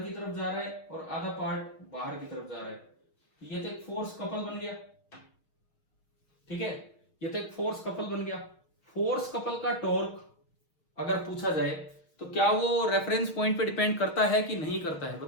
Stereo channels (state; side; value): late; right; 6.4 ms